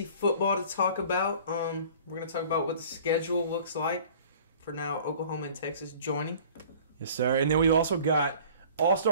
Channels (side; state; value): both; inverted; correlation -0.48